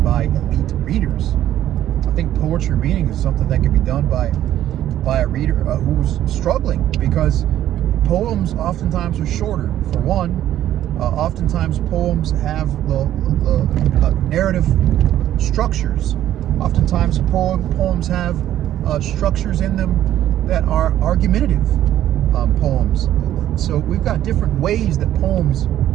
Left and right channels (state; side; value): quieter; left; 12.2 dB